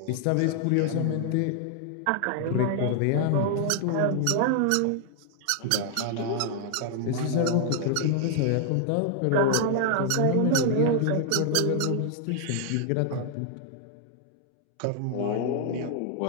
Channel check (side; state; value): both; different; correlation 0.00